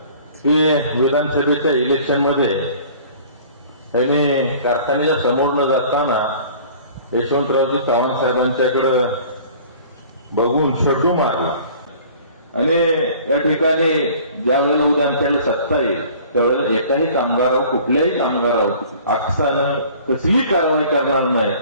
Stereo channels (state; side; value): inverted; both; correlation -0.49